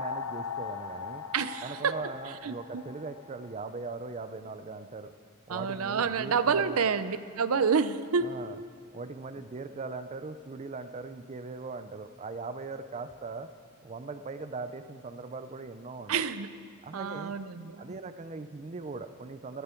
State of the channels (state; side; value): quieter; left; 4.5 dB